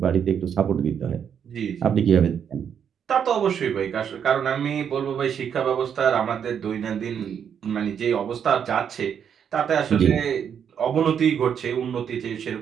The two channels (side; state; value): left; quieter; 8.0 dB